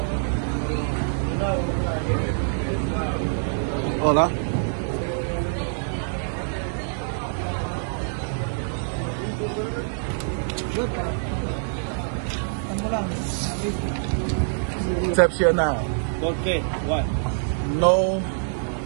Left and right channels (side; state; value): left; silent; digital silence